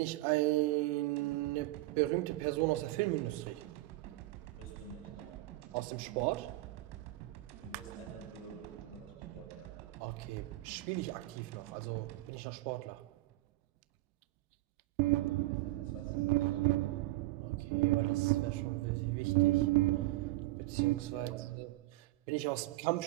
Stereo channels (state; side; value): quieter; left; 18.7 dB